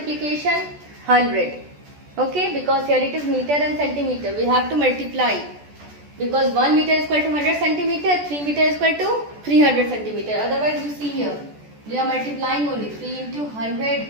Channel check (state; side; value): late; left; 14 ms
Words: 100. Okay. Because here it is meter and centimeter. We have to multiply. Because 1 meter is equal to 100 centimeter. 3 meter is equal to 300 centimeter. Otherwise you see here. We are multiplying only 3 into 100